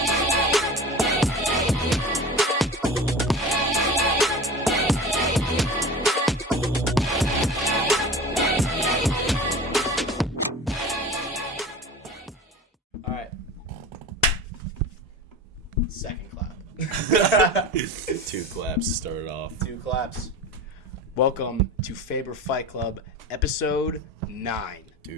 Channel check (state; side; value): normal; both; correlation 0.35